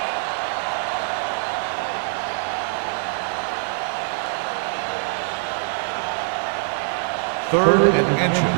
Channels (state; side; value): silent; left; digital silence